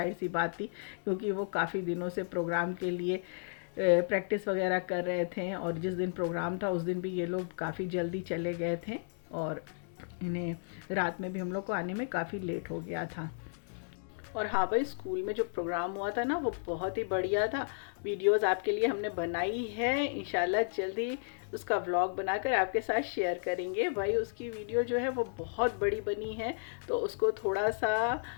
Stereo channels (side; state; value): right; silent; digital silence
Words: सी बात थी, क्योंकि वो काफ़ी दिनों से प्रोग्राम के लिए प्रैक्टिस वगैरह कर रहे थे। और जिस दिन प्रोग्राम था उस दिन भी ये लोग काफ़ी जल्दी चले गए थे, और इन्हें रात में भी हम लोग को आने में काफ़ी लेट हो गया था। और हाँ भाई, स्कूल में जो प्रोग्राम हुआ था ना वो बहुत ही बढ़िया था। वीडियोस आपके लिए हमने बनाई है, इंशाल्लाह जल्दी उसका व्लॉग बनाकर आपके साथ शेयर करेंगे। भाई उसकी वीडियो जो है वो बहुत बड़ी बनी है, तो उसको थोड़ा सा